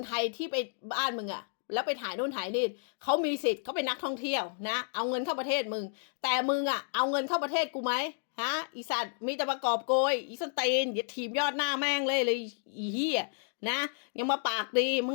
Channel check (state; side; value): silent; right; digital silence